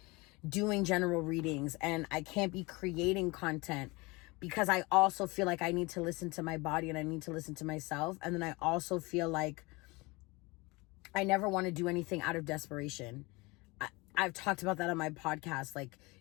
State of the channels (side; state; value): right; quieter; 24.7 dB